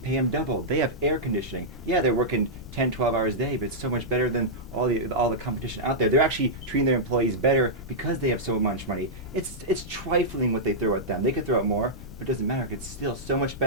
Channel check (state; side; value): noise; left; rumble, 15 dB below the sound